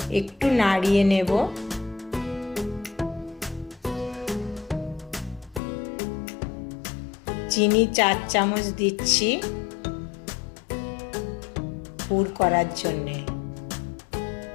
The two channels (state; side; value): drops out; right; at 5.6 s